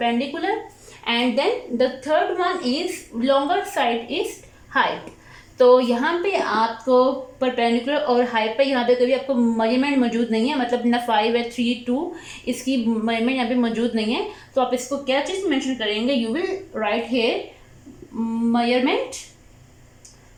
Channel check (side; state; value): both; identical; correlation 1.00